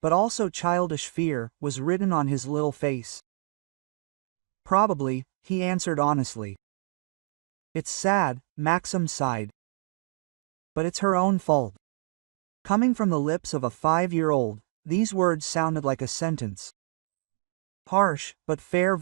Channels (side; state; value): left; silent; digital silence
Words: but also childish fear, was written on his little face. Probably, he answered honestly. It's sad, Maxim sighed. But it's her own fault. Coming from the lips of a 5-year-old, these words sounded like a sentence. Harsh, but fair